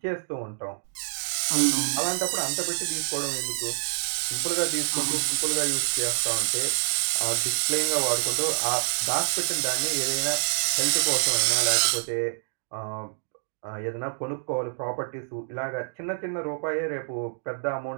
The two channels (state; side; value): silent; left; digital silence